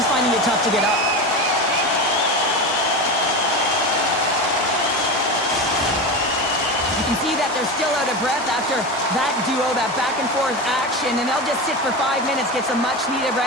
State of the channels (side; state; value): both; normal; correlation 0.23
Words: finding it tough to get up. You can see that they're still out of breath after that duo, that back and forth action, and they'll just sit for 5 minutes, get some much needed